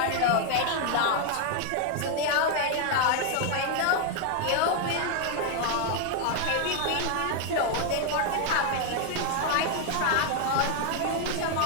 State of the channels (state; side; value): different; both; correlation 0.00